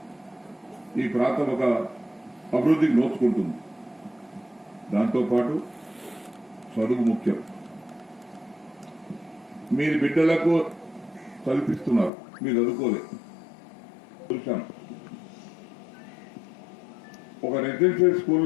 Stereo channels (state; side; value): drops out; right; at 12.1 s